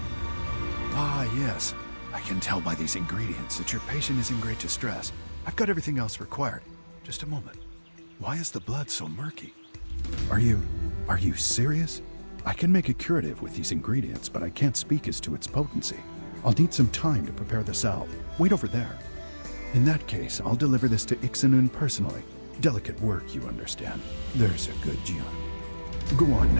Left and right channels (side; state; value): both; inverted; correlation -1.00